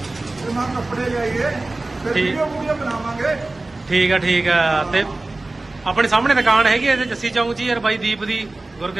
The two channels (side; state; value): left; quieter; 3.0 dB